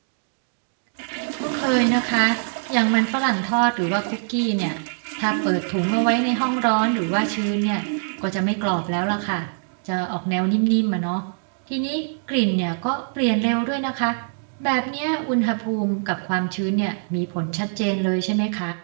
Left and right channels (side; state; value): left; silent; digital silence